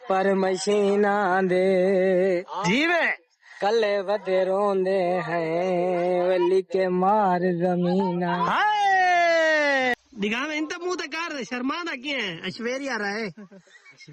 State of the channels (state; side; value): identical; both; correlation 1.00